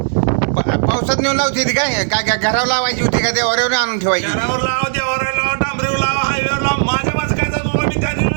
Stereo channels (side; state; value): left; silent; digital silence